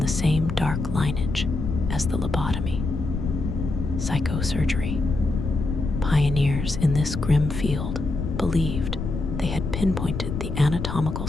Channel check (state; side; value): noise; left; rumble, 4 dB below the sound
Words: same dark lineage as the lobotomy: psychosurgery. Pioneers in this grim field believed they had pinpointed the anatomical